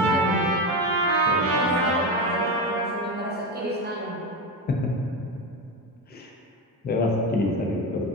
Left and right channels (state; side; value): normal; both; correlation 0.18